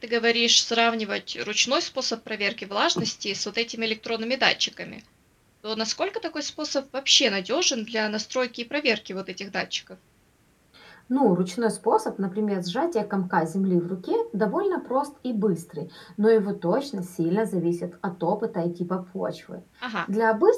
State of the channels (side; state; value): both; identical; correlation 1.00